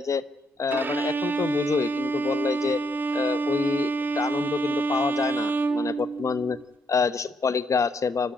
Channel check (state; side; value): normal; both; correlation 0.75